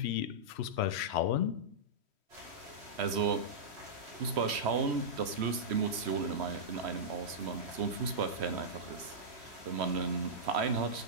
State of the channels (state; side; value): late; left; 3.1 ms